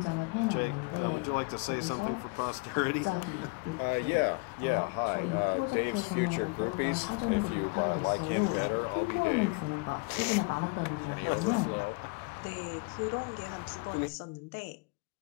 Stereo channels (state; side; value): quieter; right; 29.8 dB